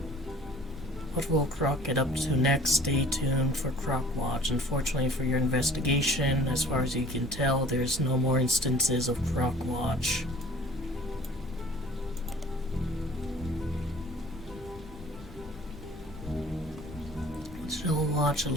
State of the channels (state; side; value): normal; both; correlation 0.50